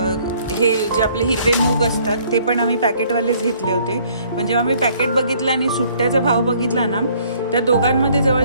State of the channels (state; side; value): inverted; both; correlation -0.61